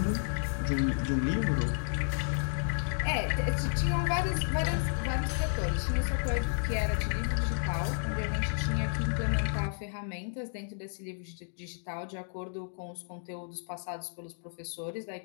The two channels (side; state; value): right; silent; digital silence